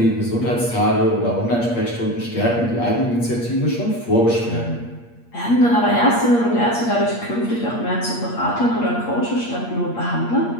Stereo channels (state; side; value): late; right; 8.5 ms